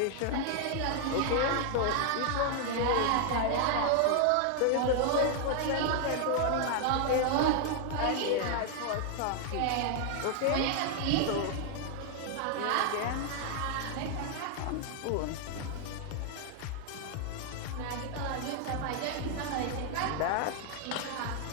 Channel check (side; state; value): both; different; correlation 0.00